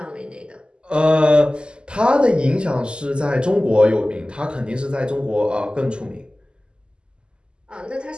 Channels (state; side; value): late; left; 0.050 ms